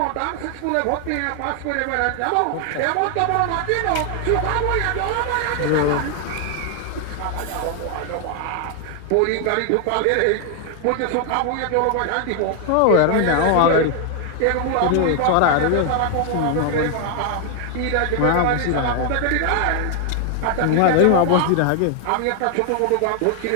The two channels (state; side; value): different; both; correlation 0.00